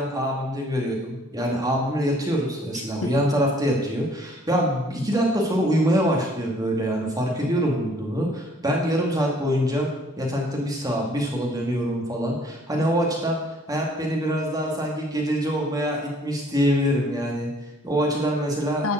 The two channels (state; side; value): normal; both; correlation 0.60